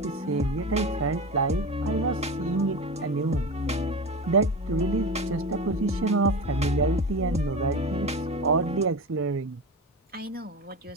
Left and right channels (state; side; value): normal; both; correlation 0.26